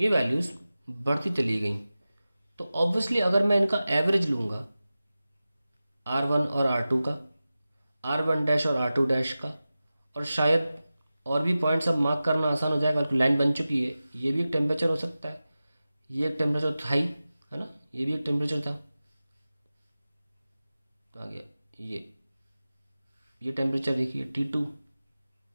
वैल्यूज़ बढ़ती चली गई। तो ऑब्वियसली अगर मैं इनका एवरेज लूँगा R1 और R2 का, R1 डैश और R2 डैश का, और शायद और भी पॉइंट्स अब मार्क करना आसान हो जाएगा, लाइन बन चुकी है। ये भी एक टेम्परेचर हो सकता है, ये एक टेम्परेचर था ही, है ना, ये भी एक टेम्परेचर था। आ गया ये टेम्परेचर देखिए T2,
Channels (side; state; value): both; inverted; correlation -0.95